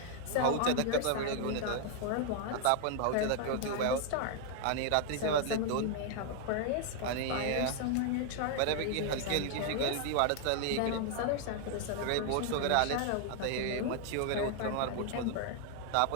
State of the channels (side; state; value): both; different; correlation 0.00